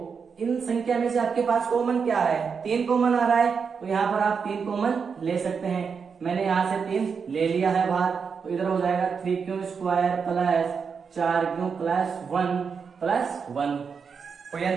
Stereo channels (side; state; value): left; quieter; 5.9 dB